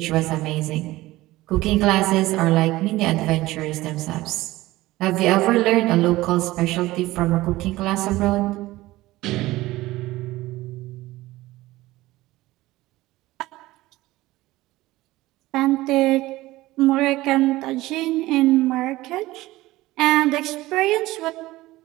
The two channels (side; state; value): left; quieter; 18.0 dB